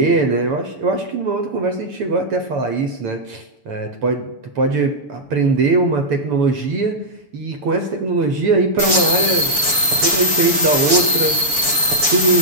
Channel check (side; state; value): left; late; 6.9 ms